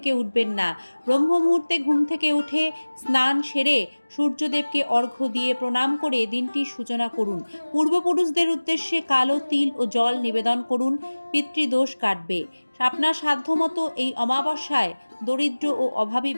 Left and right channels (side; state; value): both; inverted; correlation -1.00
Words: উঠবেন না। ব্রহ্ম মুহূর্তে ঘুম থেকে উঠে স্নান সেরে সূর্যদেবকে অর্ঘ্য দিয়ে প্রণাম করে দিনটির সূচনা করুন। পূর্বপুরুষদের উদ্দেশ্যে কালো তিল ও জল নিবেদন করুন, পিতৃদোষ কাটবে। আপনার সাধ্যমতো এই অমাবস্যায় দরিদ্র ও অভাবী